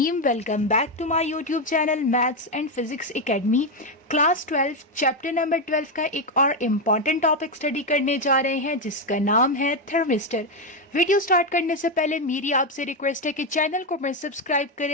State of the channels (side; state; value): both; normal; correlation 0.07